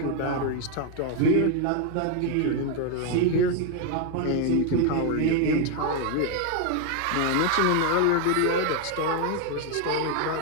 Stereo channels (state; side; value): different; both; correlation 0.01